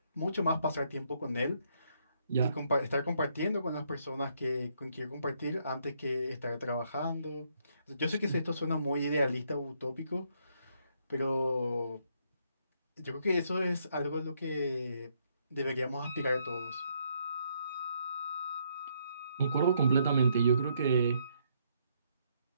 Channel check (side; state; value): both; inverted; correlation -0.73